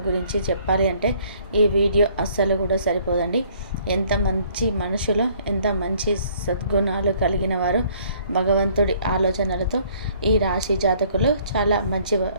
గురించి చెప్పాలి అంటే ఈ వీడియో అస్సలు కూడా సరిపోదండి. ఎంత మంచి మనుషులు, ఎంత మంచి సద్గుణాలు కలిగిన వారు, భగవంతుడి ఆలోచనలతో ఈ రాశి జాతకులు చాలా మంచి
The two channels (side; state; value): both; inverted; correlation -0.61